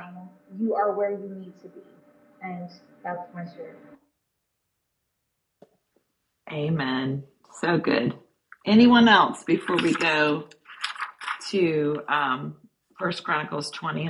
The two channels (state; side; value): identical; both; correlation 1.00